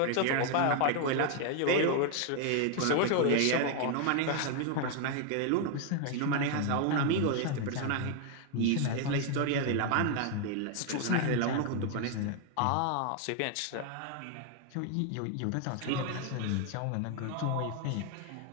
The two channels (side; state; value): both; different; correlation 0.00